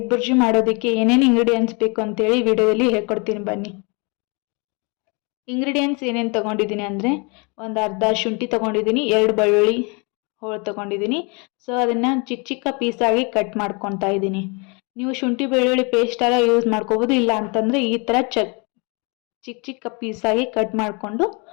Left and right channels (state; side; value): quieter; right; 31.6 dB